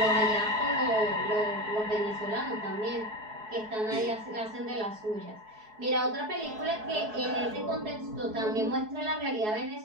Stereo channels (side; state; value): left; late; 4.7 ms